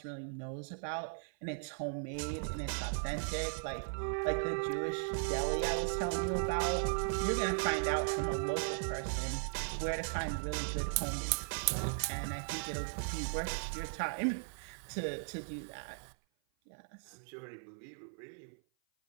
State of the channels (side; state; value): left; silent; 53 dB below the other